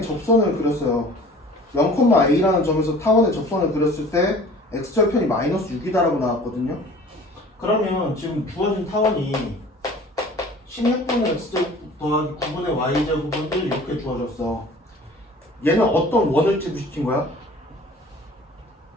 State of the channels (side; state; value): both; normal; correlation 0.46